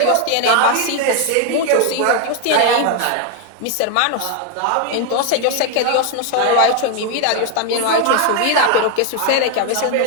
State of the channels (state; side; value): different; both; correlation 0.01